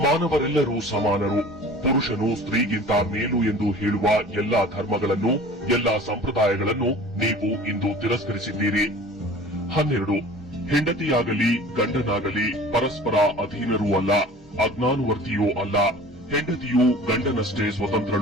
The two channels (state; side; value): normal; both; correlation 0.43